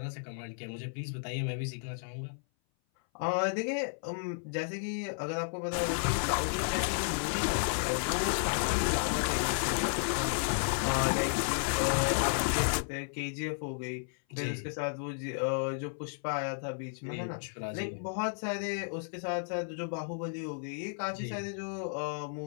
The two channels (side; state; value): right; silent; 56 dB below the other